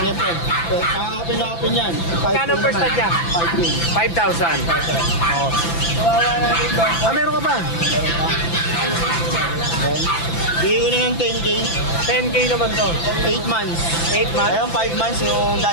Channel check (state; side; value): late; right; 5.9 ms